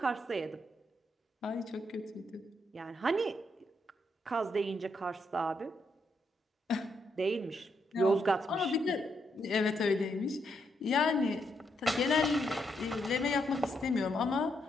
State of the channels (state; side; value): normal; both; correlation 0.78